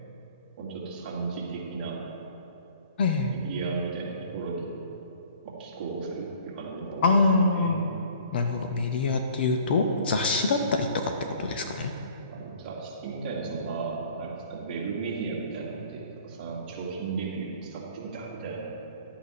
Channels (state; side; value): inverted; both; correlation -0.52